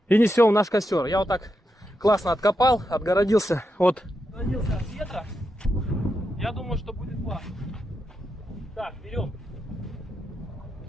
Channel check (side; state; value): both; normal; correlation 0.86